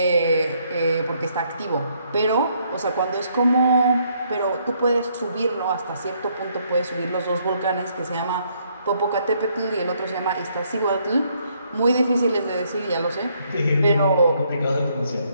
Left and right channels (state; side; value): inverted; both; correlation -0.70